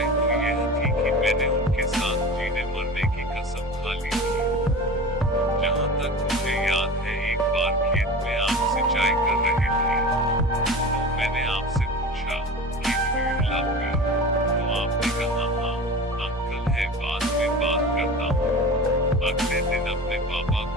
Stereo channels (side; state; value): both; normal; correlation 0.33